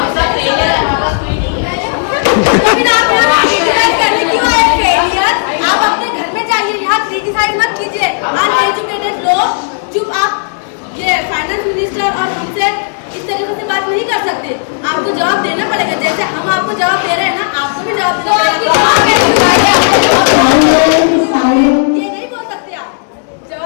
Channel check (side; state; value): right; silent; digital silence